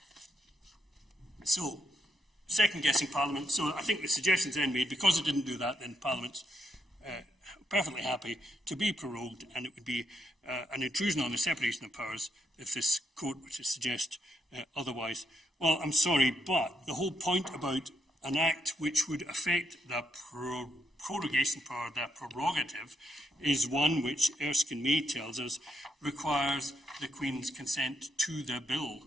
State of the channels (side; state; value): both; normal; correlation 0.79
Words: So, second-guessing Parliament. So I think the suggestions then made, because it didn't do that, then Parliament's perfectly happy to be prorogued, and it would be an intrusion on the separation of powers if this court were to suggest otherwise. Well, I'm sorry, but the whole point about an act which would affect the prorogation power, the prerogative, is one which Erskine May tells us requires the Queen's consent to the bill.